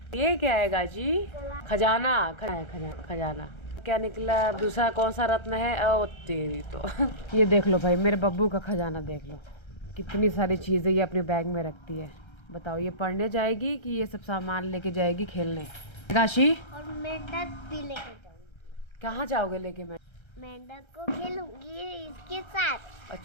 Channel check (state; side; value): late; right; 1.3 ms